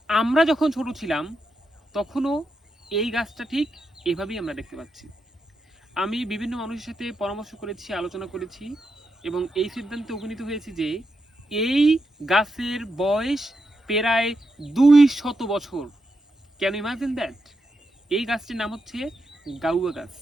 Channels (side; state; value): both; normal; correlation 0.85